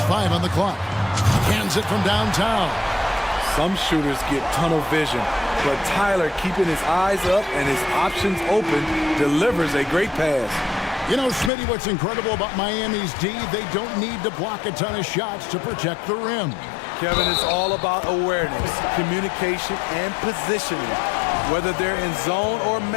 5 on the clock. Hands it from downtown. Some shooters get tunnel vision, but Tyler, keeping his eyes up and his options open, delivers a great pass. You know, Smitty, what's incredible about Miami's D, they don't need to block a ton of shots to protect the rim. Kevin, it's all about awareness, communication, and positioning. Whether they're in zone or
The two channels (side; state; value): right; drops out; at 11.5 s